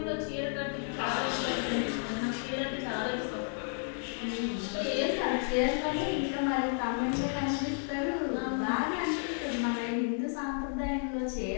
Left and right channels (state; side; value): silent; right; 56 dB below the other